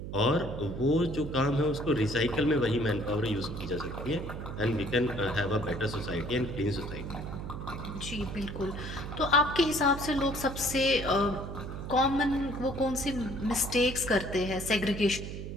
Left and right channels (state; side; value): noise; right; hum, 7 dB below the sound